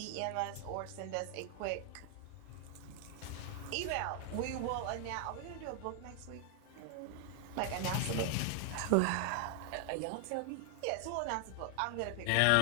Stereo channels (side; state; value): both; different; correlation 0.00